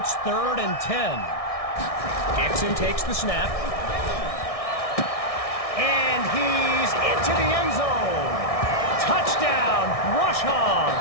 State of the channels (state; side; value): late; right; 1.6 ms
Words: 3rd and 10. Dixon takes the snap. And he's into the end zone. Touchdown, Brush